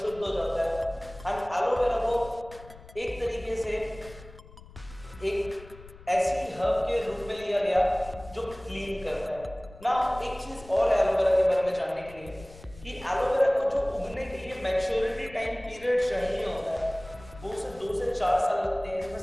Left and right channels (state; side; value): noise; left; rumble, 19 dB below the sound